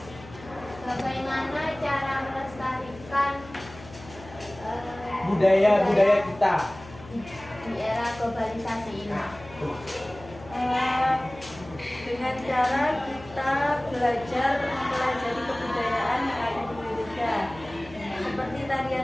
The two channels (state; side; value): noise; left; hum, 18 dB below the sound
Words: Bagaimana cara melestarikan Budaya-budaya kita. di era globalisasi ini? Dengan cara kita belajar mempelajari kebudayaan yang ada di Indonesia. Seperti